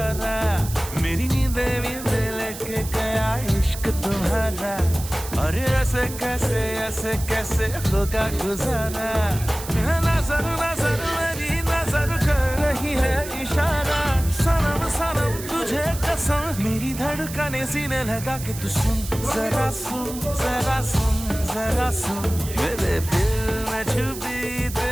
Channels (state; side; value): noise; right; hiss, 11 dB below the sound